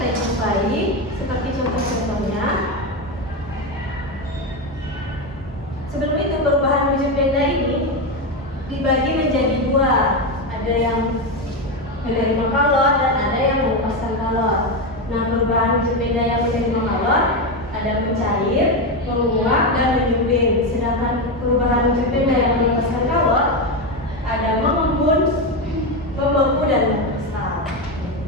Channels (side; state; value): both; normal; correlation 0.12